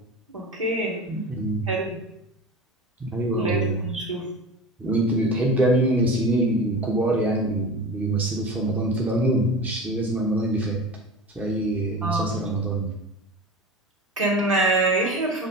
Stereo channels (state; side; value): normal; both; correlation 0.32